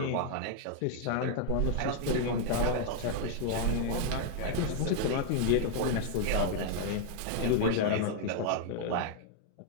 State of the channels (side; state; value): both; different; correlation 0.00